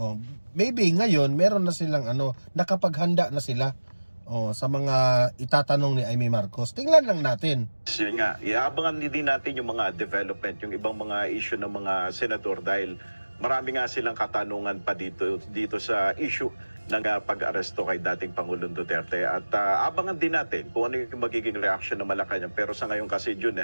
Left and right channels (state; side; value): inverted; both; correlation -1.00